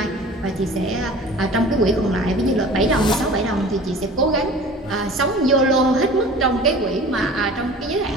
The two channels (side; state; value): both; normal; correlation 0.42